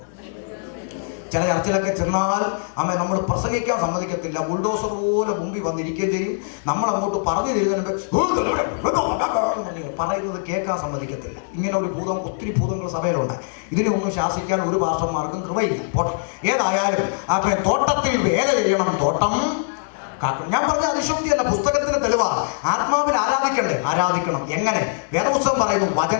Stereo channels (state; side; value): silent; right; digital silence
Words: ചില ചർച്ചിലൊക്കെ ചെന്നാൽ നമ്മൾ പ്രസംഗിക്കാൻ സമ്മതിക്കത്തില്ല. ബുൾഡോസർ പോലെ മുമ്പിൽ വന്നിരിക്കുകയും ചെയ്യും. നമ്മളങ്ങോട്ട് പറഞ്ഞു തരുന്നതിന് മുമ്പ് പറയുന്നത് കേൾക്കാൻ സമ്മതിക്കത്തില്ല. ഇങ്ങനെ ഒരു ഭൂതം, ഒത്തിരി ഭൂതങ്ങൾ സഭയിലുണ്ട്. ഇതിനെ ഒന്നും ശാസിക്കാൻ ഒരു പാസ്റ്റർമാർക്കും കൃപയില്ല. പോട്ടെ, ഏതായാലും തോട്ടത്തിൽ വേല ചെയ്യണം, തോട്ടം കാക്കണം. ഞാൻ പറഞ്ഞ അതിശോക്തിയല്ല, പുസ്തകത്തിന് തെളിവാ. ആത്മാവിൽ ആരാധിക്കണം. എങ്ങനെ? വേദപുസ്തകം പറയുന്നു,